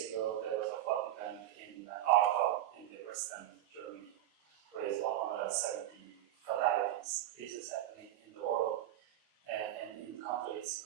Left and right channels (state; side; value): quieter; left; 13.1 dB